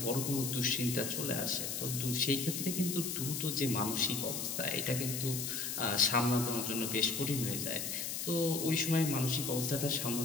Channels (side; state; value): left; noise; hiss, 3 dB below the sound